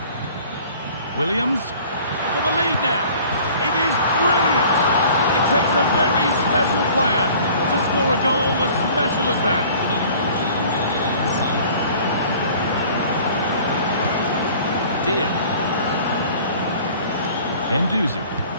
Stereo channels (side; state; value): both; inverted; correlation -0.49